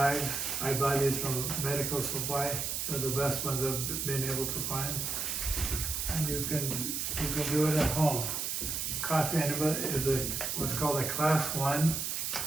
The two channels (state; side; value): noise; right; hiss, 2 dB below the sound